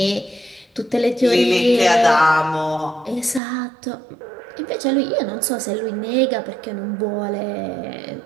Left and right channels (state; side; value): drops out; left; at 3.4 s